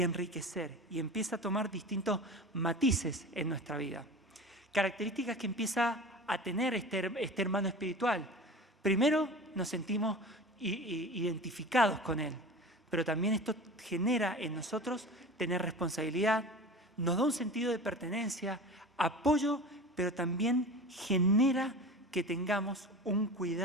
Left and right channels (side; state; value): both; normal; correlation 0.34